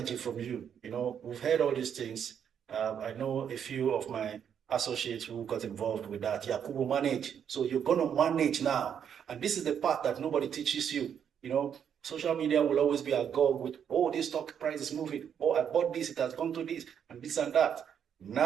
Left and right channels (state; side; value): quieter; left; 8.3 dB